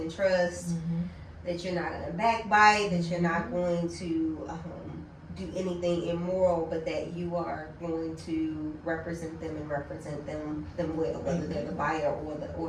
trust, that you're not going to backbite, that you're not going to do anything immoral, but that you are going to represent them and represent them well, whether they're the buyer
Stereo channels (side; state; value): both; identical; correlation 1.00